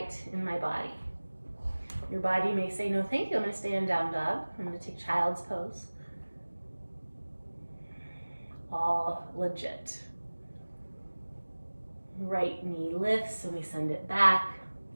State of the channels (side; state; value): both; inverted; correlation -1.00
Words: in my body. Your body may say, no, thank you. I'm going to stay in down dog. I'm going to take child's pose. All legit. Right knee lifts and we send it back.